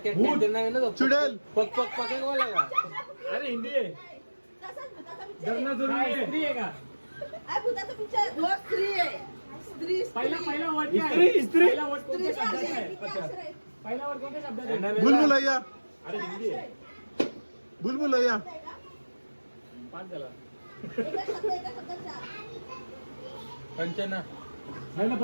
भूत. ते नाही ना तो. चुडेल. पक पक पक बोला का? अरे हिंदी आहे. तसाच भुताचा picture आहे. धरणा जरूर आहे. स्त्री आहे का? अरे भुताचा picture. हो, स्त्री आहे. स्त्री पहिला स्त्री. पहिला वर्ड काय? इस्त्री, इस्त्री. पहिला वर्ड कोणत्या स्त्रीचे शब्दाचा अक्षर आहे? किती अक्षर आहेत? पहिला वर्ड कोणत्या शब्दाचा यांना आहे? वेगळा. बुलबुलैया अरे हिंदी आहे. बुलबुलैया. आहे का? पाच झाला. एका शब्दाचा. कंचना. नाही ना,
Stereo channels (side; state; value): both; inverted; correlation -1.00